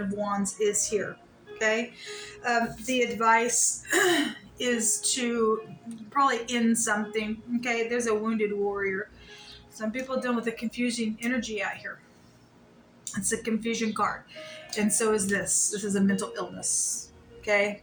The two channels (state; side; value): identical; both; correlation 1.00